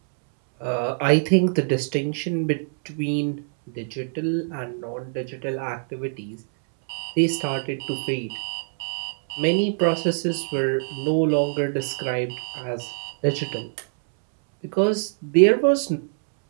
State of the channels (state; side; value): silent; left; 62 dB below the other